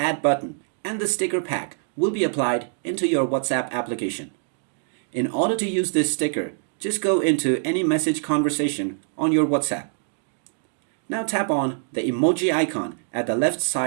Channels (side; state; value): left; silent; digital silence